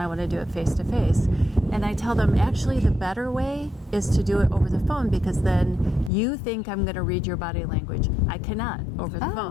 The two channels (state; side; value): drops out; right; at 6.1 s